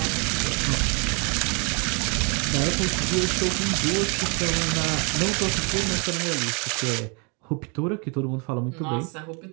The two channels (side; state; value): left; quieter; 33.5 dB